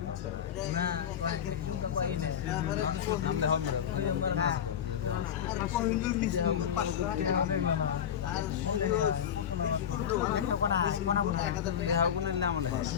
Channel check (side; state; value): right; quieter; 8.9 dB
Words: না নামলে হবে না